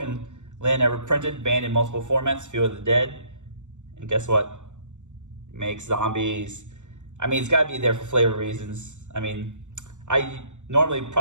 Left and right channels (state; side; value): late; left; 0.84 ms